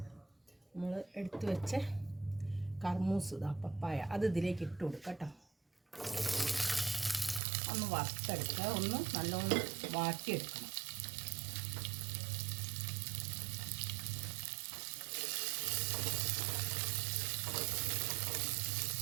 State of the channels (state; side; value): drops out; left; at 7.4 s